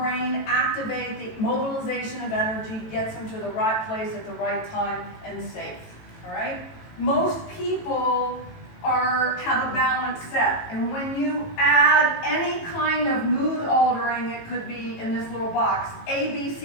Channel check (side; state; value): right; late; 18 ms